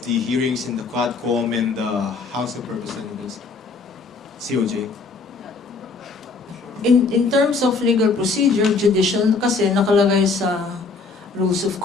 the hearings in the QuadCom and the House of Representatives, COJ? In terms of legal procedure, judicial kasi nakalagay sa rules of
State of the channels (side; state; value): right; quieter; 4.3 dB